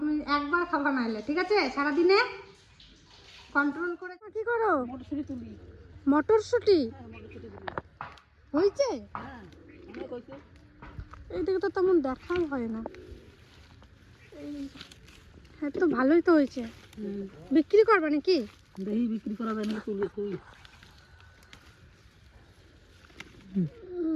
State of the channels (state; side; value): identical; both; correlation 1.00